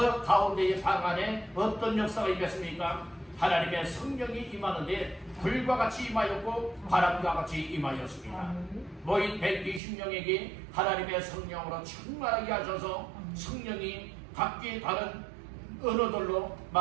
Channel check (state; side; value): drops out; left; at 9.8 s